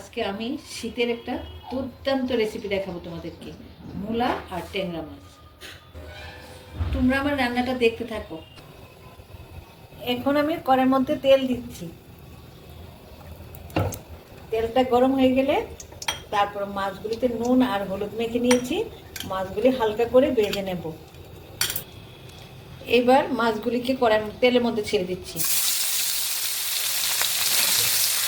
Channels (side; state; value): both; identical; correlation 1.00